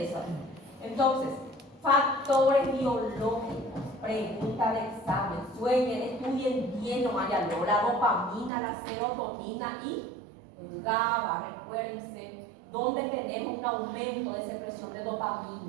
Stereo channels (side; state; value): left; drops out; at 8.5 s